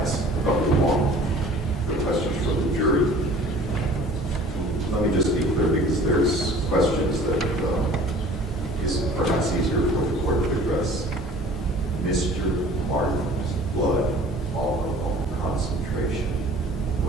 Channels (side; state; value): both; normal; correlation 0.48